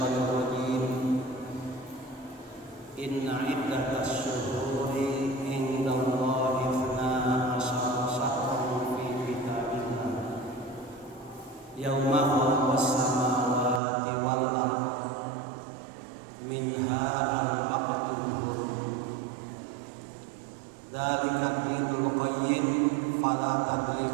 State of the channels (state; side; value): drops out; left; at 13.8 s